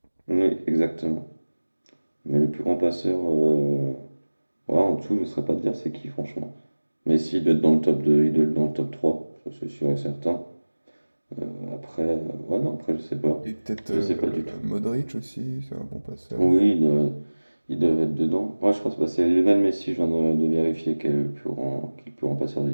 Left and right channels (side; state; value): both; inverted; correlation -1.00